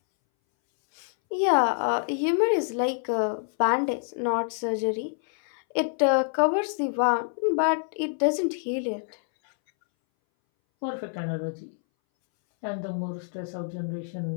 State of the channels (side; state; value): right; silent; 60 dB below the other